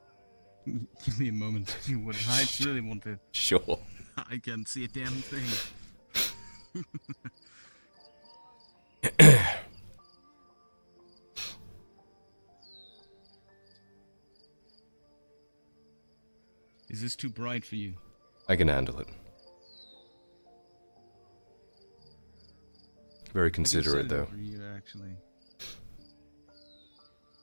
Give me a moment, if you would. I really want to. Sure. I can't see a damn thing. Is this too bright for you? I can handle it. Very considerate, though. For you, actually.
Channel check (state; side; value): inverted; both; correlation -1.00